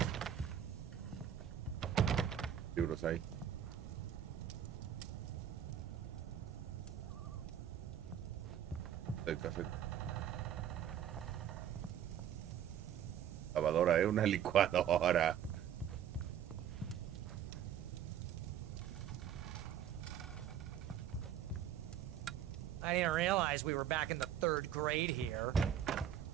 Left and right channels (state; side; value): quieter; left; 9.9 dB